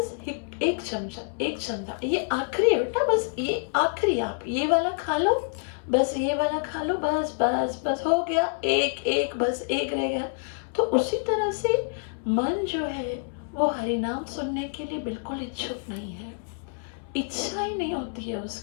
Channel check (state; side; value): silent; right; 60 dB below the other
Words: एक चमचा, ये आखिरी है बेटा, बस ये आखिरी, आप ये वाला खा लो, बस ये वाला खा लो, बस बस बस हो गया, एक बस एक रह गया। तो उसी तरह से मन जो है वो हरिनाम सुनने के लिए बिल्कुल इच्छुक नहीं है। इच्छा ही नहीं होती है